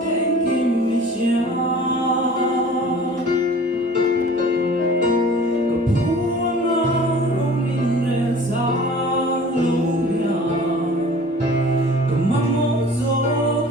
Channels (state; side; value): normal; both; correlation 0.45